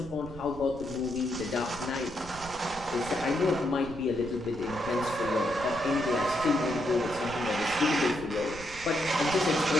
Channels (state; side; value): noise; right; rumble, 16 dB below the sound